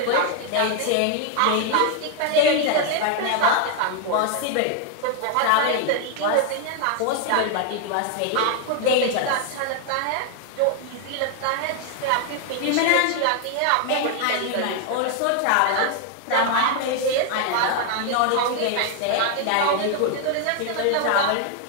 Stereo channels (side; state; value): both; different; correlation 0.00